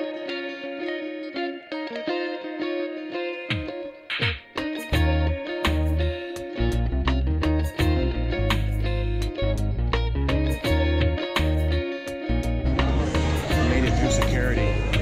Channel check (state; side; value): identical; both; correlation 1.00